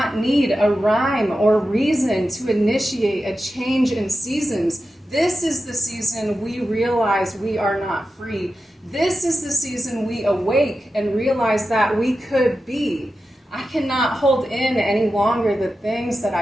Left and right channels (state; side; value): normal; both; correlation 0.91